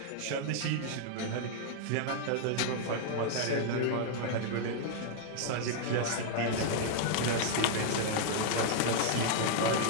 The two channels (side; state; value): both; different; correlation -0.01